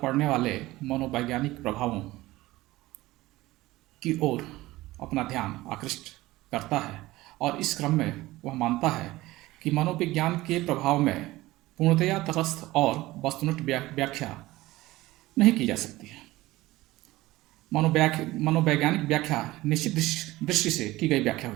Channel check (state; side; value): quieter; left; 18.2 dB